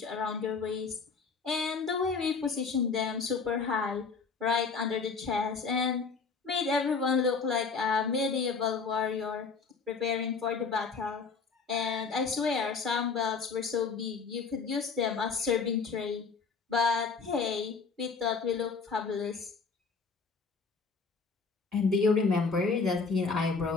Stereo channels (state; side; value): quieter; right; 5.0 dB